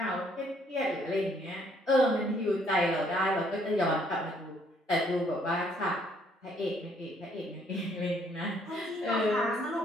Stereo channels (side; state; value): both; normal; correlation 0.66